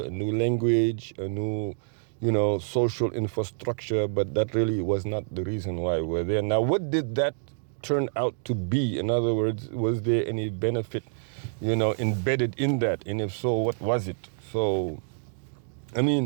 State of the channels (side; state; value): left; silent; digital silence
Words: new language, a new, social infrastructure, but that really was not the reason why we're there. Now, what did that turn out to be? In other words, was there any benefit, embedded in that? And if so, what was it? So, I